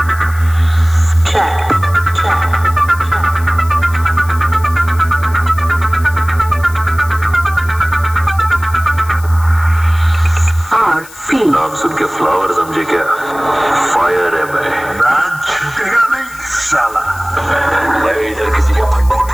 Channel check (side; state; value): left; noise; hiss, 19 dB below the sound